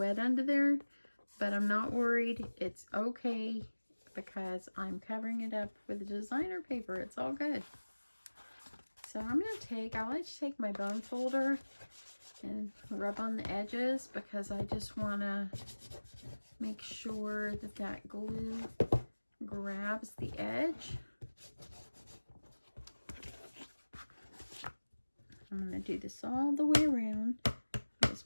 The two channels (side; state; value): both; inverted; correlation -1.00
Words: under there, but I'm not worried. It's okay because I'm covering it up with designer paper. It's all good. So I'm going to take, I like to take my bone folder and rub on the edges because I just want to make sure that that glue grabs the edge. I'm going to do this all the way around. This